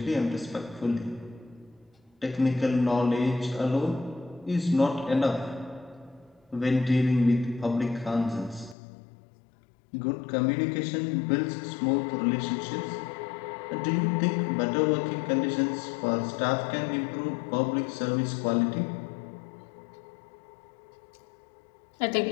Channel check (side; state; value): right; drops out; at 8.8 s